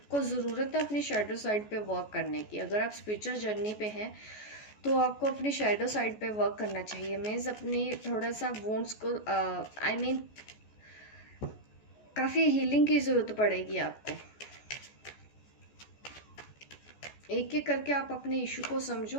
ज़रूरत है अपनी शैडो साइड पे वर्क करने की। अगर आप स्पिरिचुअल जर्नी पे हैं तो आपको अपनी शैडो साइड पे वर्क करना चाहिए। मीन्स अपनी थोड़ा सा वोन्स को काफ़ी हीलिंग की ज़रूरत पड़ेगी आपको। एक एक करके आप अपने इशू को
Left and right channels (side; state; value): right; late; 14 ms